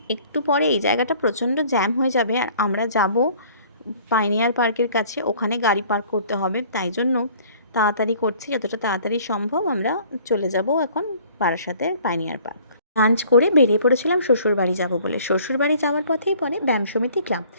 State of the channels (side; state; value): both; inverted; correlation -0.54